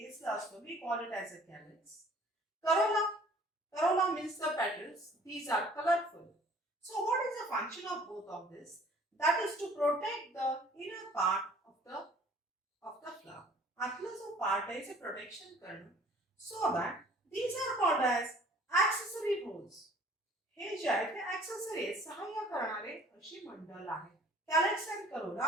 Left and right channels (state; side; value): normal; both; correlation 0.53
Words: असतो. We call it as a calyx. Corolla means the petals these are colourful. So what is the function of both of this. That is to protect the inner part of the flower. आतला जो part आहे ते protection करणं. So that these are called as accessory roles. हे जे आहे ते accessory सहाय्य करणारे अशी मंडल आहे. Calyx and